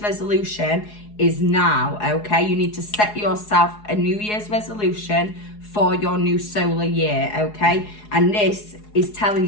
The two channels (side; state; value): right; late; 4.8 ms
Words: is now, okay? You need to set yourself a New Year's resolution for your new solar year, okay? And this is